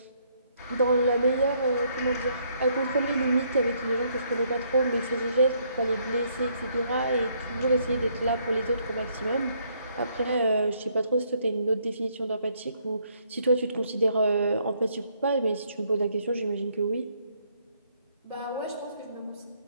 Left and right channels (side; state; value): both; inverted; correlation -0.69